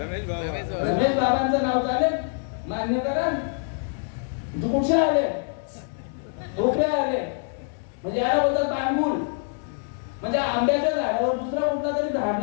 बाबांचं नाव चालेल? मान्य करा. कुठे आले? ढोकळे आले म्हणजे याला बोलतात पाणगुल. म्हणजे आंब्याच्या झाडावर दुसरा कुठला तरी झाड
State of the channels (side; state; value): right; silent; 60 dB below the other